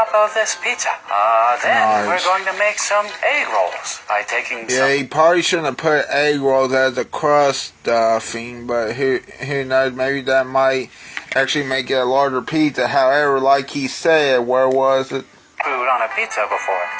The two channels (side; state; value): both; identical; correlation 1.00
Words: of this pizza. Then we're going to make some egg rolls by taking some... Yeah, he probably shouldn't have put egg rolls as a crust stuffing, but who knows, maybe that might actually make it a larger pizza. However, like he said, where was it? Food on a pizza before.